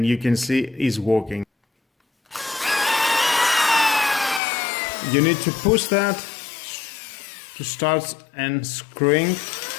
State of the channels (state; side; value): drops out; right; at 4.4 s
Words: you can see it's working. You need to push that to start and screwing,